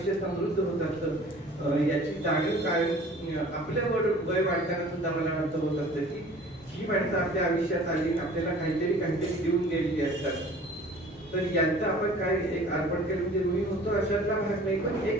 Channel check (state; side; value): normal; both; correlation 0.47